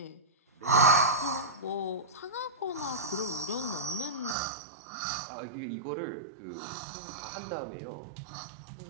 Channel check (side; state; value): left; drops out; at 4.4 s